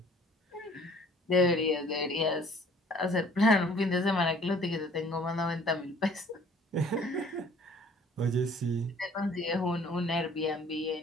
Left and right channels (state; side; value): normal; both; correlation 0.55